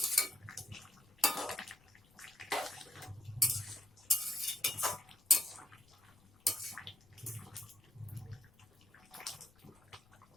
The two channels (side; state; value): left; noise; rumble, 28 dB below the sound